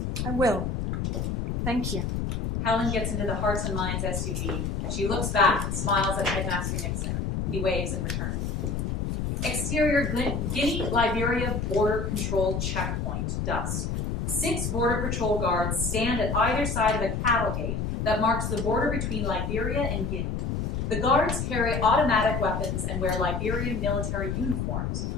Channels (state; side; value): noise; left; rumble, 1 dB below the sound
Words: I will. Thank you. Helen gets into the Hearts and Minds SUV. She looks back and smiles at Headmaster Nixon. He waves in return. Exterior Guinea-Liberia border control checkpoint, dusk. 6 border patrol guards stand at either side of a cattle gate that marks the border between Liberia and Guinea. The guards carry automatic weapons and wear Liberian military uniforms,